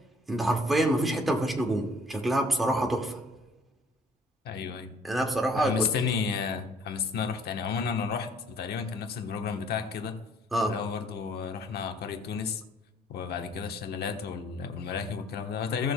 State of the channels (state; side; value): normal; both; correlation 0.58